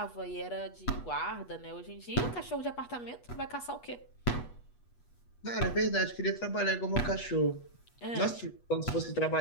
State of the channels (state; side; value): late; right; 8.2 ms